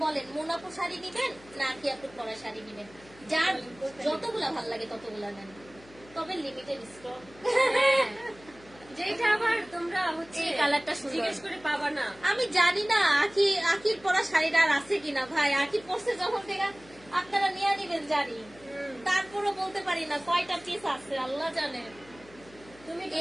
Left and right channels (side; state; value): left; noise; hum, 23 dB below the sound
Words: বলেন মোনাপু শাড়ি নিবেন না কি আপু পরা শাড়ি নিবেন? যার যতগুলা ভাল লাগে ততগুলা নেন, তবে লিমিটেড স্টক। যেটা আবার তোমরা হচ্ছে এই কালারটা সুন্দর, জিজ্ঞেস করে পাবা না। আমি জানি না আখির পরা শাড়িটা আর আছে কিনা ভাই। আখি পরছে যখন থেকে আপনারা নিয়ে নিবেন জানি, তারপরও বলতে পারি না কয়টা পিস আছে, আল্লাহ জানে। তুমি তো